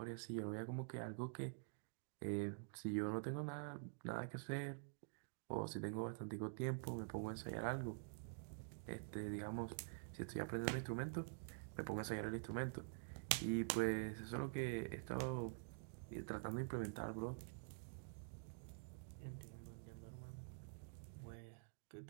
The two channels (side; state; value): left; silent; digital silence